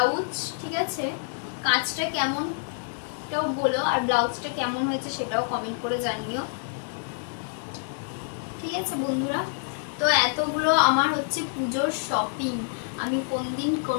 ঠিক আছে। কাজটা কেমন এটাও বলো, আর ব্লাউজটা কেমন হয়েছে সেটাও কমেন্ট করে জানিও, ঠিক আছে বন্ধুরা। তো এতগুলো আমার হচ্ছে পুজোর শপিং, আমি কোন দিন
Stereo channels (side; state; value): right; silent; 60 dB below the other